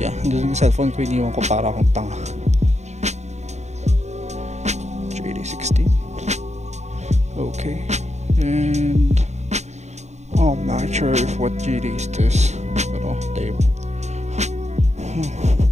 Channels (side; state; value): left; late; 0.33 ms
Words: doon yung cellphone ko, iniwan ko para akong tanga. JD16. Okay. And I'm not sure if what JD is this. Pero tape.